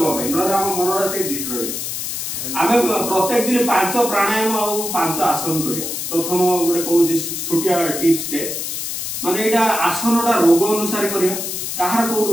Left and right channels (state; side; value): noise; left; hiss, 4 dB below the sound